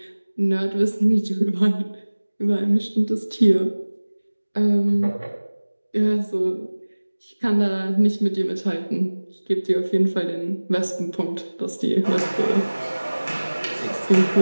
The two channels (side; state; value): both; inverted; correlation -1.00